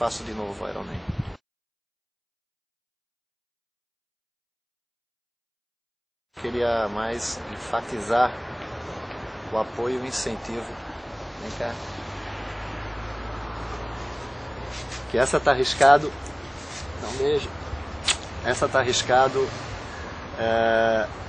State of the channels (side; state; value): both; identical; correlation 1.00